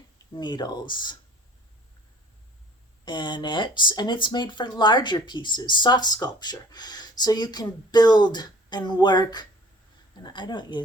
needles in it, and it's made for larger pieces, soft sculpture. So you can build and work. And I don't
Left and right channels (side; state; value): both; normal; correlation 0.51